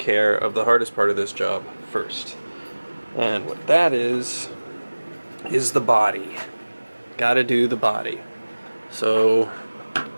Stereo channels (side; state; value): both; inverted; correlation -1.00